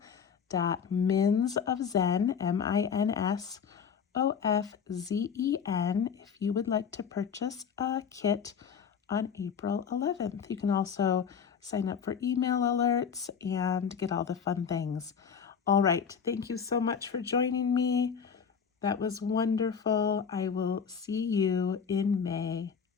MINSOFZEN, if you would like to purchase a kit on April 11th. You can also sign up for email alerts and get all the fun things. All right, thank you so much for joining me. That was wonderful. I will see you in May.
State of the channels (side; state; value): right; quieter; 6.9 dB